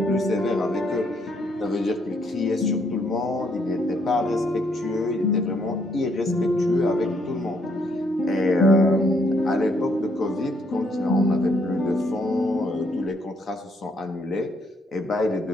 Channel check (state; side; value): normal; both; correlation 0.71